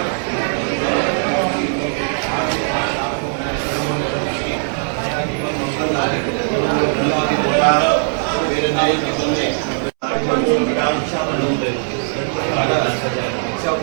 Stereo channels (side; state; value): left; silent; 67 dB below the other